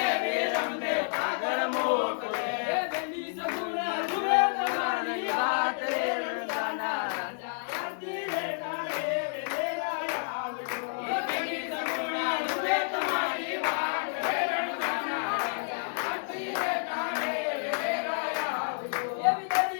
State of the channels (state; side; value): silent; right; 58 dB below the other